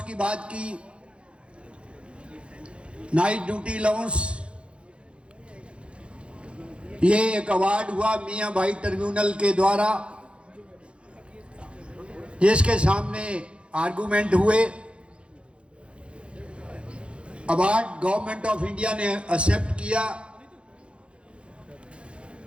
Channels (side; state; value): left; late; 0.058 ms